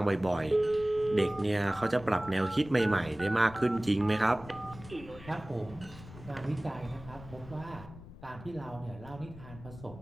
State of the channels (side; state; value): left; noise; rumble, 16 dB below the sound